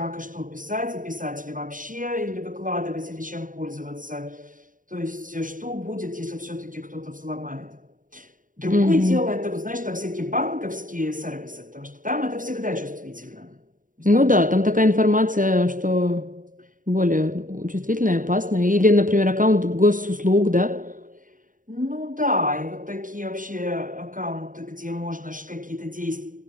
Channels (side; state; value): left; late; 0.39 ms